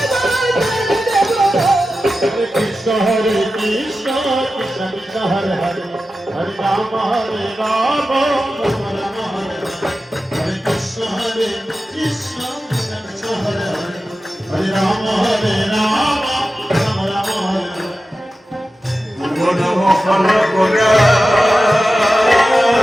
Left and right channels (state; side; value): normal; both; correlation 0.93